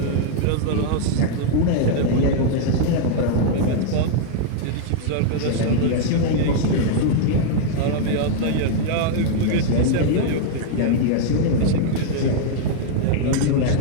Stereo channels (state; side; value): different; both; correlation 0.00